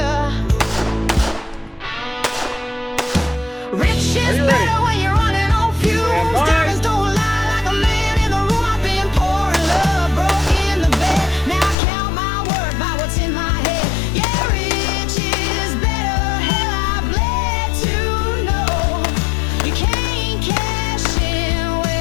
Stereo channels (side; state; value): right; drops out; at 11.8 s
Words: Rich is better when you're running on fumes. Diamonds don't lie like a man in the room. I've been pouring love, broke in the bed. Now I count my worth by what's in my head. Yeah, rich is better. Hell, I bled to know you can't cash in